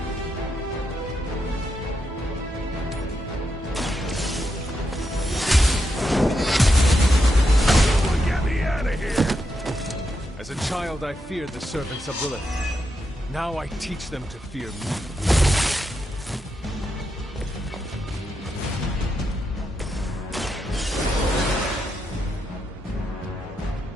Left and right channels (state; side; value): normal; both; correlation 0.84